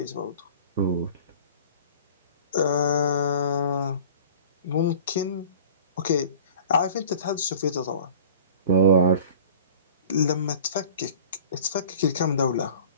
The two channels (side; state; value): both; inverted; correlation -0.44